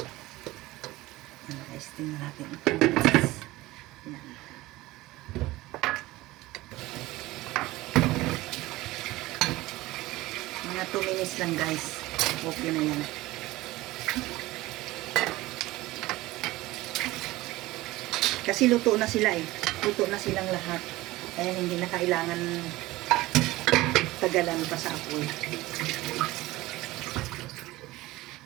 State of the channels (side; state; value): left; quieter; 18.7 dB